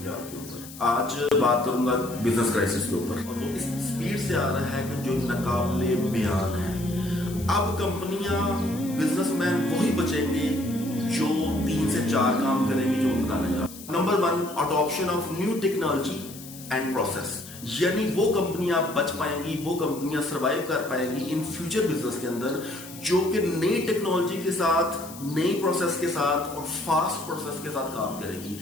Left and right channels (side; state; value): left; noise; hiss, 15 dB below the sound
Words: کے اوپر آج بات کروں گا بزنس کرائسس کے اوپر، اور وہ اس سپیڈ سے آ رہا ہے کہ جو ناقابل بیان ہے۔ اب کمپنیاں، بزنس مین وہی بچیں گے جو 3 سے 4 کام کریں گے جو میں بتانے جا رہا ہوں۔ Number 1، adoption of new technology and process, یعنی وہ کمپنیاں بچ پائیں گی، وہ کمپنیاں سروائیو کر پائیں گی ان فیوچر بزنس کے اندر، جو کہ نئی ٹیکنالوجی کے ساتھ، نئی پروسیس کے ساتھ اور فاسٹ پروسیس کے ساتھ کام کرے گی۔